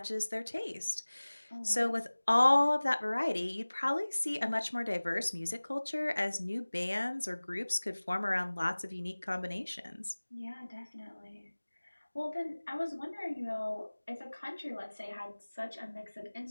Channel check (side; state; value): both; inverted; correlation -1.00